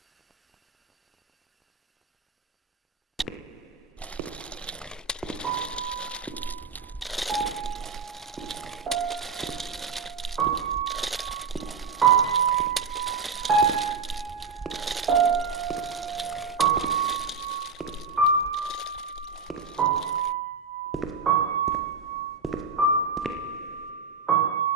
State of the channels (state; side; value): quieter; left; 5.1 dB